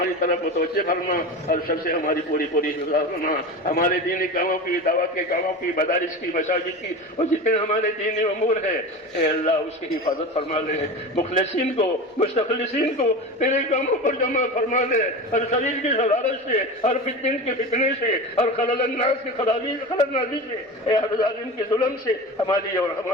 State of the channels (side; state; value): both; normal; correlation 0.29